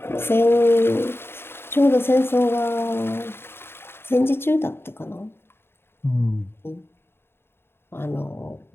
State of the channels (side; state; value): right; late; 0.11 ms